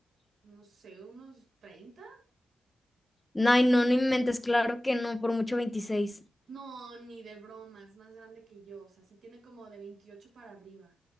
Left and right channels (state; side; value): normal; both; correlation 0.98